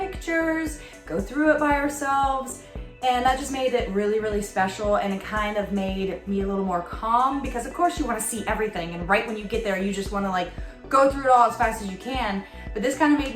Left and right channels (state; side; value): identical; both; correlation 1.00